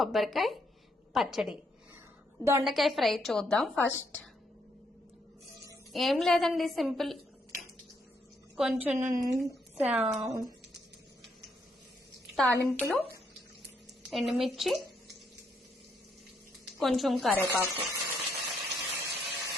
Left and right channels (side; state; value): both; normal; correlation 0.75